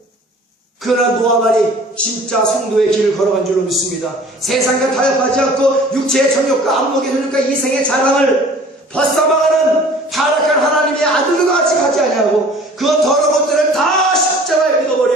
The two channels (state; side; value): normal; both; correlation 0.49